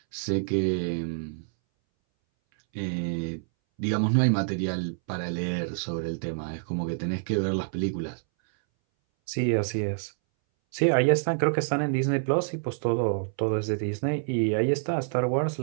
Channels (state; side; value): silent; left; 60 dB below the other